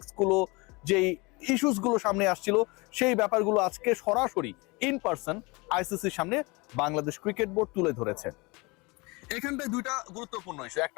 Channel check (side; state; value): right; quieter; 26.2 dB